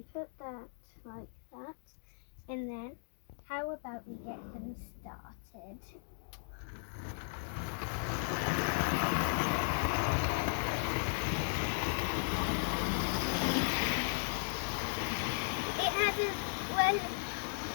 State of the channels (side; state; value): right; silent; digital silence